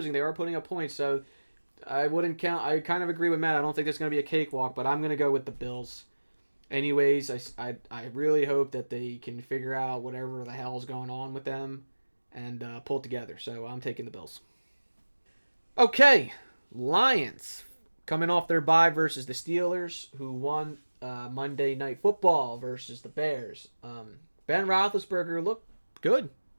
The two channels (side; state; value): both; inverted; correlation -1.00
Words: they are putting up points. So I wouldn't count. I kind of agree with Matt. I don't think there's going to be a cakewalk, but I'm going to go with the Bills. Anyways, I really hope that they can figure out whatever the hell's going on with them and pull it together. So I'm taking the Bills. Okay, Lions coming off their bye versus the Steelers, who won Monday Night Football versus the Bears. Ben Roethlisberger looked good.